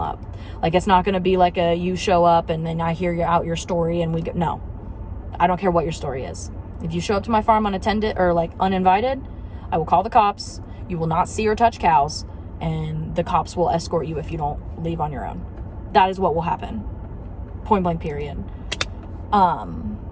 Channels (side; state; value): both; identical; correlation 1.00